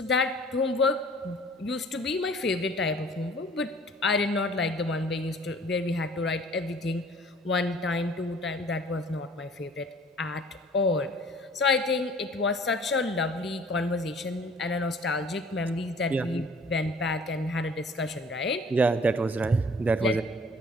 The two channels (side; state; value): both; normal; correlation 0.52